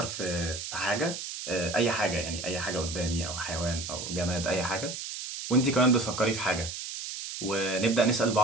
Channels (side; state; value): right; noise; hiss, 7 dB below the sound